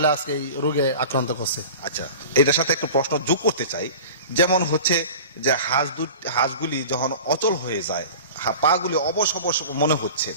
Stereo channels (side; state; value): both; inverted; correlation -0.37